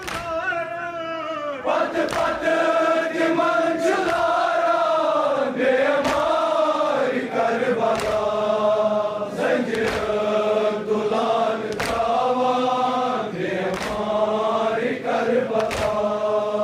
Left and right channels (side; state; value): both; identical; correlation 1.00